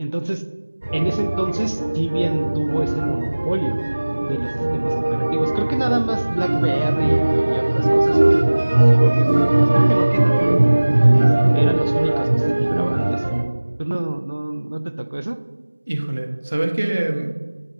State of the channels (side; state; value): both; inverted; correlation -1.00